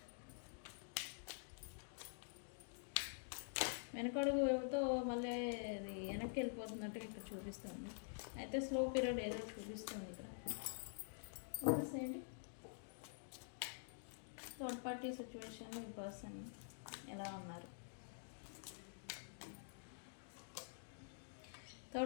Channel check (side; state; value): right; silent; digital silence